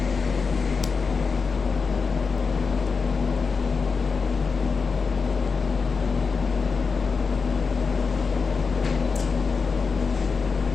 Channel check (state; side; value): quieter; right; 5.0 dB